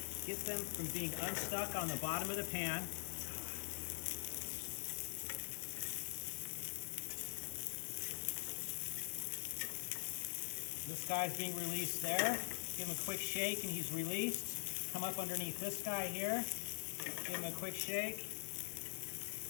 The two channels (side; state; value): right; silent; digital silence